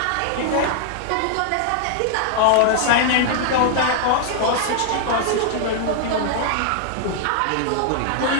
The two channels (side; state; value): both; different; correlation 0.00